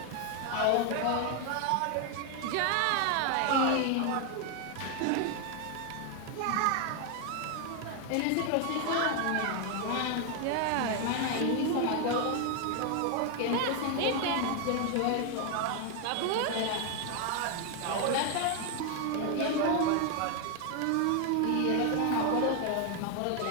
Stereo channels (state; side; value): different; both; correlation 0.01